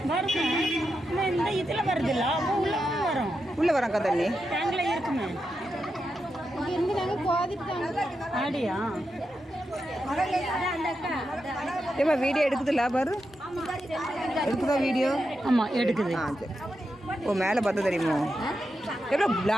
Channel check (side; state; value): both; normal; correlation 0.87